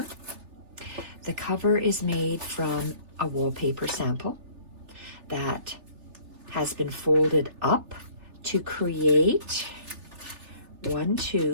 The cover is made from a wallpaper sample that has been folded up to create 1,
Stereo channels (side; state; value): left; late; 3.3 ms